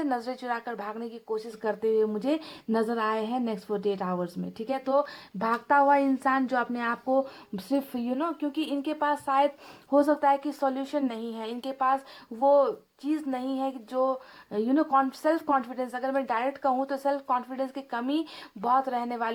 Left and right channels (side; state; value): both; identical; correlation 1.00